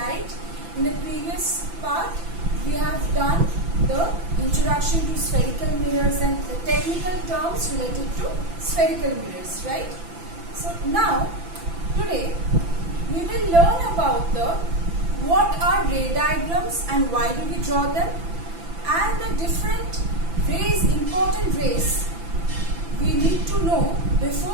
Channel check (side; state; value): left; late; 5.9 ms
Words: In the previous part we have done the introduction to spherical mirrors and the technical terms related to spherical mirrors, right? So now today we will learn about what are ray diagrams and why do we draw them, and the different rays, important rays we need to know